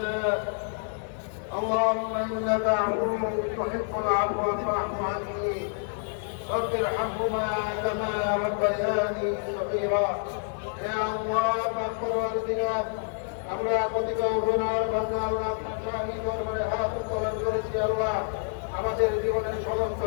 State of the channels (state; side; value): silent; right; digital silence